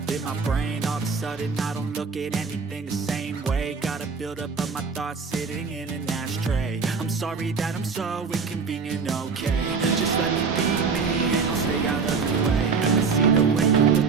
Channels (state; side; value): quieter; left; 5.1 dB